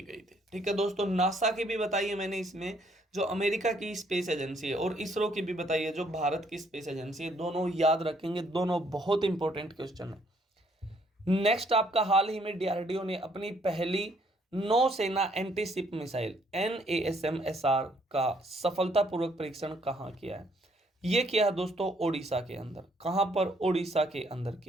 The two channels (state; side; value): normal; both; correlation 0.67